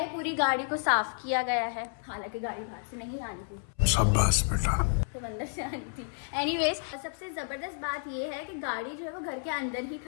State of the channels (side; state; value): right; silent; 57 dB below the other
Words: पूरी गाड़ी को साफ किया गया है, हालांकि गाड़ी बाहर से नहीं आनी थी, शाबाश बेटा, तो अंदर से आनी थी। एनीवेज सबसे जबरदस्त बात ये है कि गाड़ी जो है वो घर के अंदर ही